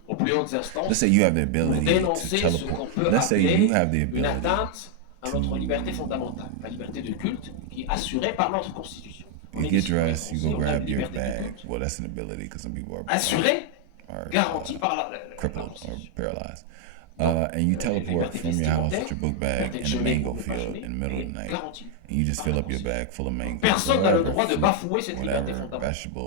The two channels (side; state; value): both; different; correlation 0.00